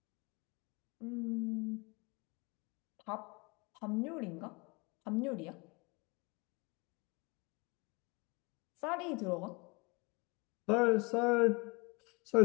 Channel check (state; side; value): quieter; right; 28.2 dB